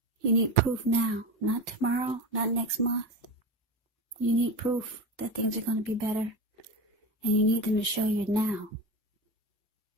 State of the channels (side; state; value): both; normal; correlation 0.24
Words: You need proof now, not tomorrow, not next month. You need proof that things are going to be better. And you need them to show you now.